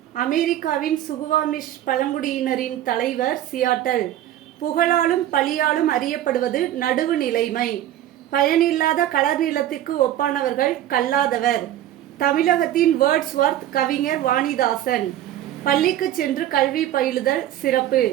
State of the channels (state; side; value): quieter; left; 12.4 dB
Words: அமெரிக்காவின் சுகுவாமிஷ் பழங்குடியினரின் தலைவர் சியாட்டல். புகழாலும் பழியாலும் அறியப்படுவது நடுவு நிலைமை. பயனில்லாத கலர் நிலத்துக்கு ஒப்பானவர்கள் கல்லாதவர். தமிழகத்தின் வேர்ட்ஸ்வர்த் கவிஞர் வாணிதாசன். பள்ளிக்கு சென்று கல்வி பயிலுதல் சிறப்பு.